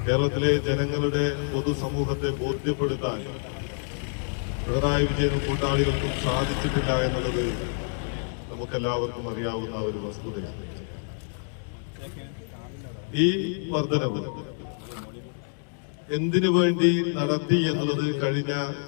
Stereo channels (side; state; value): right; silent; 60 dB below the other